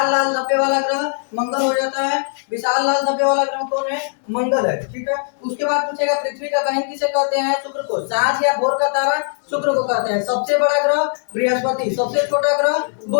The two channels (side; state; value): right; silent; 66 dB below the other